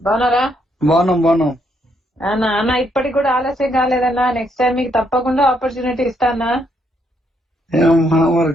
బాగున్నారా? బాగున్నాం. అన్న ఇప్పటికి కూడా ఆలస్యం కాలేదన్నా. నెక్స్ట్ టైం మీకు తప్పకుండా ఆపర్చునిటీ ఇస్తానా.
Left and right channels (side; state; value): both; normal; correlation 0.74